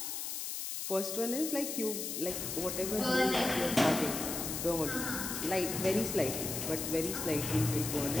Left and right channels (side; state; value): left; noise; hiss, 4 dB below the sound